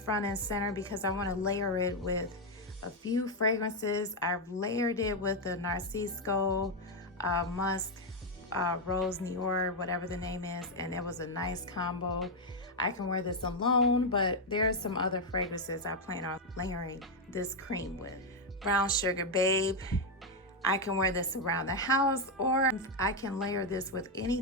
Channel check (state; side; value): normal; both; correlation 0.03